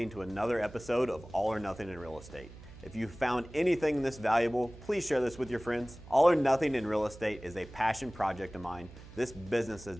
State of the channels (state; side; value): noise; right; hum, 17 dB below the sound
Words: to another episode of All or Nothing in Real Estate. If you found anything this valuable, please share this with your friends. All or Nothing in Real Estate is a passion project of mine. This business has